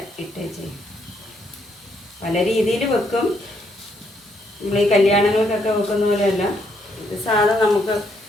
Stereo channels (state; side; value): normal; both; correlation 0.73